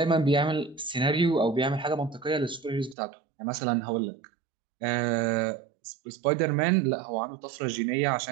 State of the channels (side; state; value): left; drops out; at 3.0 s